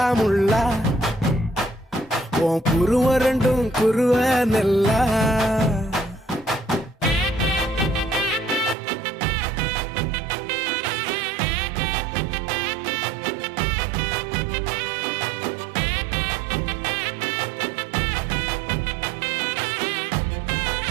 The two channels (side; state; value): left; drops out; at 8.8 s